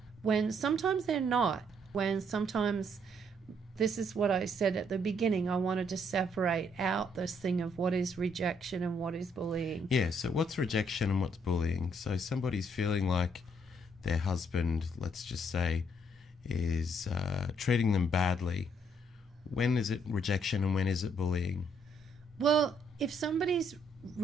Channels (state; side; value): normal; both; correlation 0.70